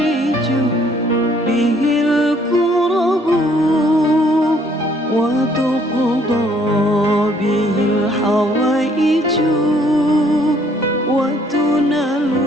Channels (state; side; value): normal; both; correlation 0.63